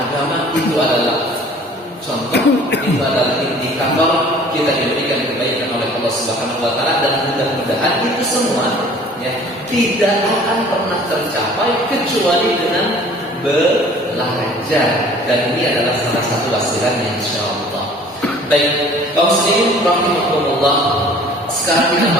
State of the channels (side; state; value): both; normal; correlation 0.50